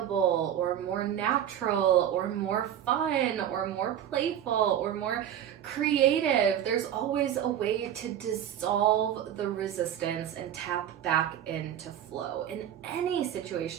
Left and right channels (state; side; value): quieter; left; 10.4 dB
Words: or more natural or more fun or more playful or more creative. There's always a way to dissolve the resistance and tap back into flow in any